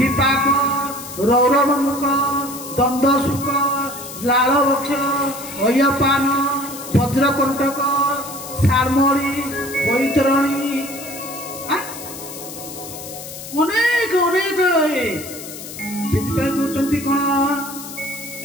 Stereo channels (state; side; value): noise; left; hiss, 12 dB below the sound